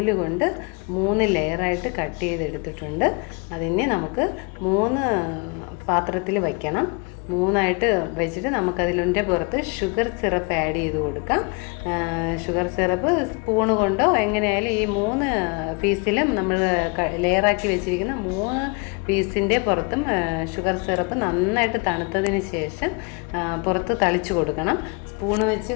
കൊണ്ട് 3 ലെയറായിട്ട് കട്ട് ചെയ്തെടുത്തിട്ടുണ്ട്. അതിനെ നമുക്ക് 3 പാത്രത്തിൽ വയ്ക്കണം. 3ആയിട്ട് വെച്ചിട്ട് നമുക്കതിൻ്റെ പുറത്ത് ഷുഗർ സിറപ്പ് ആഡ് ചെയ്ത് കൊടുക്കാം. ഷുഗർ സിറപ്പ് സ്പൂണ് കൊണ്ടോ എങ്ങനെയായാലും ഈ 3 പീസിലും നമ്മൾ ലെയറാക്കി വെച്ചിരിക്കുന്ന 3 പീസിൻ്റെ പുറത്തും ഷുഗർ സിറപ്പ് നന്നായിട്ട് തണുത്തതിന് ശേഷം പുറത്ത് തളിച്ചു കൊടുക്കണം. സ്പൂണ് വെച്ച്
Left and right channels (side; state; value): right; quieter; 31.7 dB